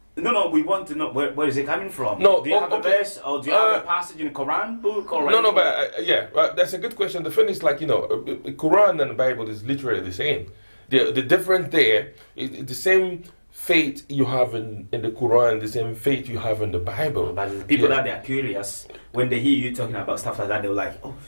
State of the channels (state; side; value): inverted; both; correlation -1.00